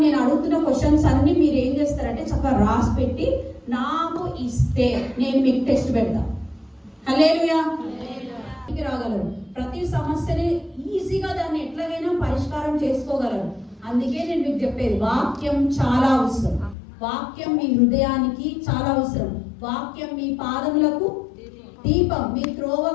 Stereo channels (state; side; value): drops out; right; at 16.8 s